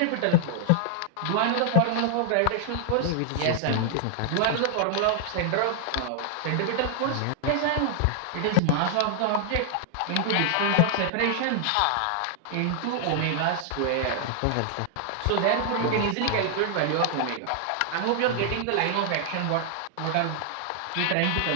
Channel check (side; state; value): both; different; correlation 0.00